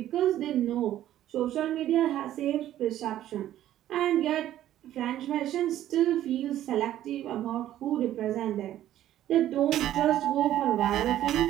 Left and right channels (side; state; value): left; quieter; 12.6 dB